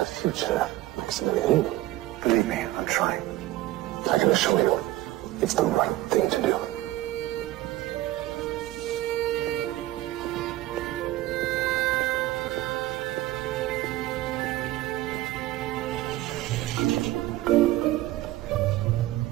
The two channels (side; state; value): left; quieter; 16.2 dB